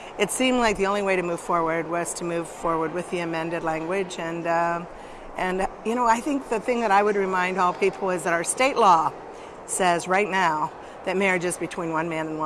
it seemed like the only way to move forward was to move forward with the amended language. And you know, I think the thing that I would remind all people is that our state law says right now that marriage is between one man and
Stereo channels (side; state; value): both; identical; correlation 1.00